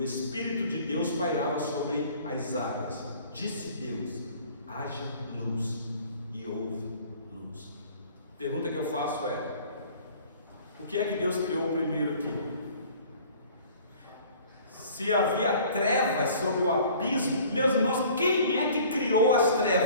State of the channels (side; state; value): both; inverted; correlation -0.51